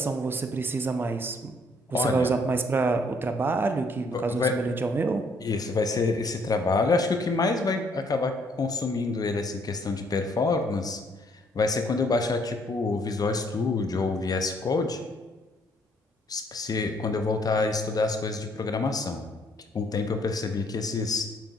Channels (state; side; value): normal; both; correlation 0.66